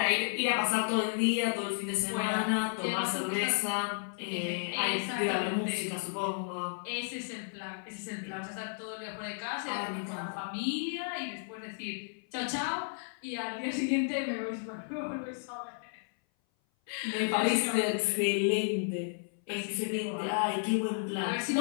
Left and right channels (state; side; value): silent; right; 56 dB below the other